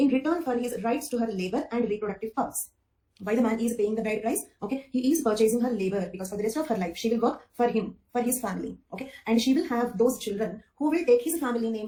return for his rights to her labor and reproductive powers. Why the man is paying the bride price? Okay, he is purchasing her labor because for the rest of her life, she will work for him, for his family. Okay, and she will have those children who will take his family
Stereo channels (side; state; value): both; identical; correlation 1.00